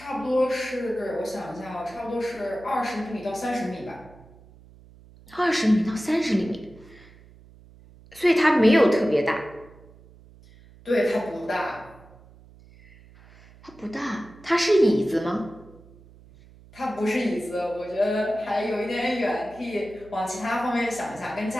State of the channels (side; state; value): right; noise; hum, 24 dB below the sound